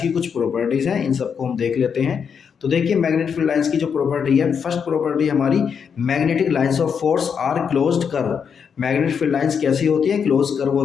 की कुछ प्रॉपर्टीज हैं, इन सबको हम देख लेते हैं। तो देखिए मैग्नेटिक फील्ड लाइंस की जो प्रॉपर्टी है, फर्स्ट प्रॉपर्टी हमारी, magnetic lines of force are closed curve. Magnetic field lines कैसी होती है, क्लोज कर्व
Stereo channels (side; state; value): right; quieter; 6.8 dB